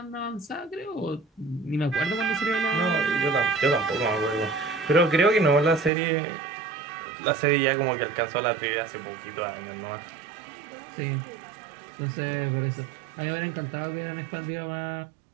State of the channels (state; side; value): drops out; left; at 5.9 s